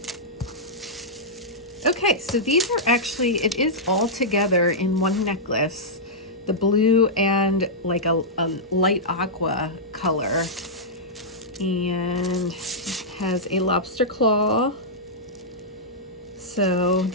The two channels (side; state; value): both; normal; correlation -0.10